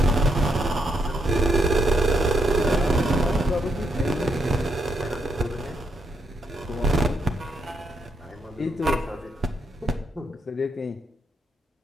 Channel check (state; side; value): normal; both; correlation 0.79